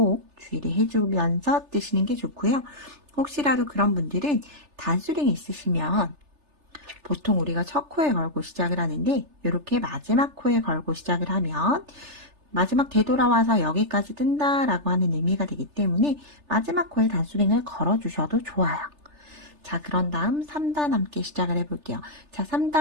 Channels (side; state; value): left; late; 3.4 ms